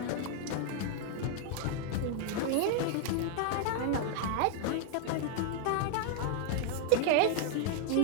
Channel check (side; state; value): both; different; correlation 0.00